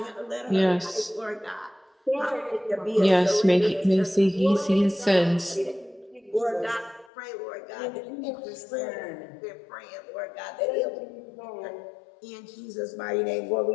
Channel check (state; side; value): drops out; right; at 7.1 s